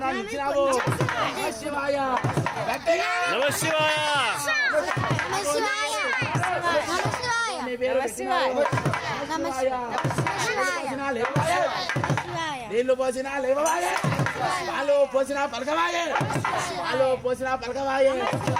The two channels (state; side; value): identical; both; correlation 1.00